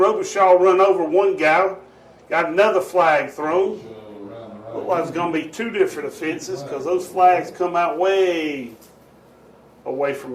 run over one guy. Got another flag thrown. Looked like it's going to be two different offenses because those flags come out way away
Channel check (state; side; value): identical; both; correlation 1.00